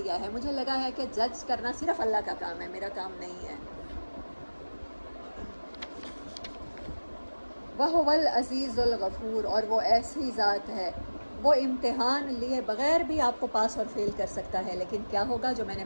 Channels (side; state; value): both; inverted; correlation -1.00